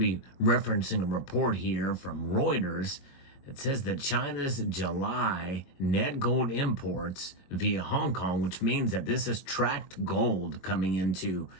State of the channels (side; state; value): right; late; 22 ms